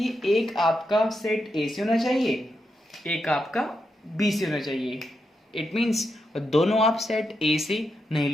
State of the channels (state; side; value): normal; both; correlation 0.84